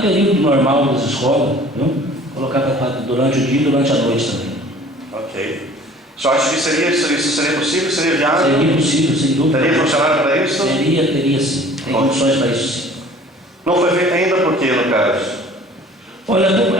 período normal das escolas, viu? Colocar durante o dia e durante a noite também. Ok. Só acha que isso seria possível? Seria viável? Seria possível, sem dúvida. Teria funcionário para isso? Teria sim. Tem condições para isso sim. Não foi feito ainda por quê, no caso? Olha,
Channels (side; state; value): both; normal; correlation 0.49